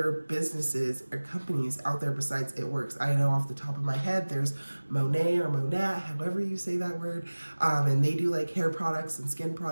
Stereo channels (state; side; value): inverted; both; correlation -1.00